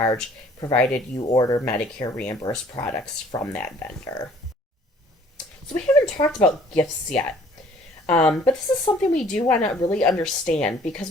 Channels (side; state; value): both; normal; correlation 0.56